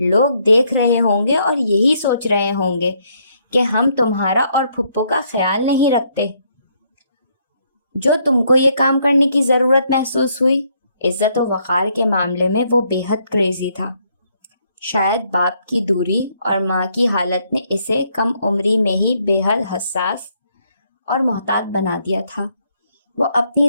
دیکھ رہے ہوں گے اور یہی سوچ رہے ہوں گے کہ ہم تمہارا اور پھپھو کا خیال نہیں رکھتے۔ جو تم کو یہ کام کرنے کی ضرورت محسوس ہوئی، عزت و وقار کے معاملے میں وہ بے حد کریزی تھا۔ شاید باپ کی دوری اور ماں کی حالت نے اسے کم عمری میں ہی بے حد حساس اور محتاط بنا دیا تھا۔ وہ اپنی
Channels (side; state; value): both; inverted; correlation -0.71